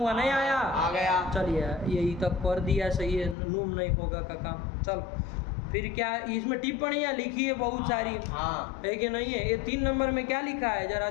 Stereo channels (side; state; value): right; drops out; at 3.4 s